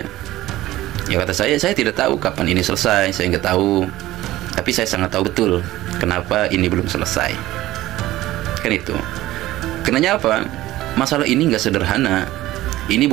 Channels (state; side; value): quieter; left; 16.2 dB